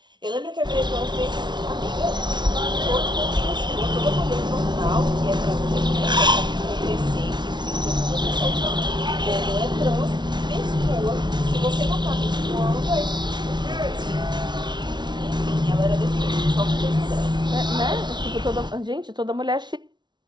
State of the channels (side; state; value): left; late; 0.21 ms